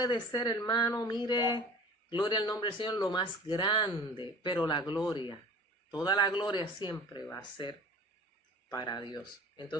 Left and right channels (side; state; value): both; normal; correlation 0.42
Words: ser, hermano, mire, gloria al nombre del Señor, lo más grande, pero la gloria, toda la gloria siempre va a ser para Dios.